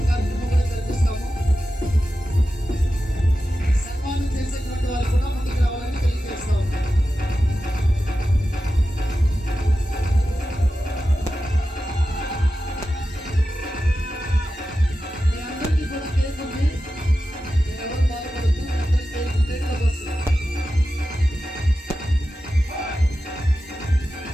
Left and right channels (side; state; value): both; normal; correlation 0.92